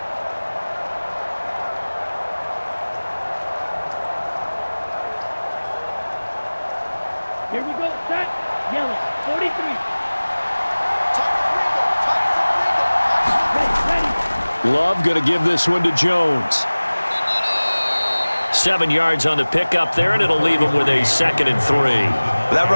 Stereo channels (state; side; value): inverted; both; correlation -1.00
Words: Here we go, set, yellow, 43. Ready. Love going to give this one to Jones. 7 yards on the pickup there, and it'll leave him with a 2nd and 3. That